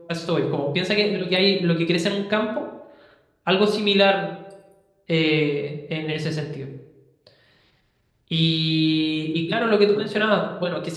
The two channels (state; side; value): identical; both; correlation 1.00